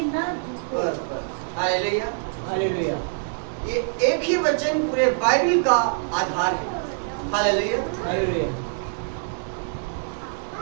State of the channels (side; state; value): left; silent; 62 dB below the other